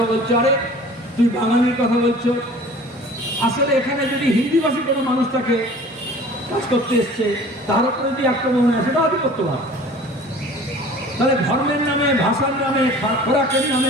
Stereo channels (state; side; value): normal; both; correlation 0.45